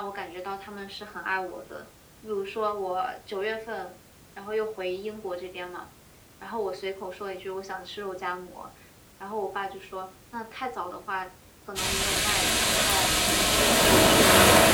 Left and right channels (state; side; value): identical; both; correlation 1.00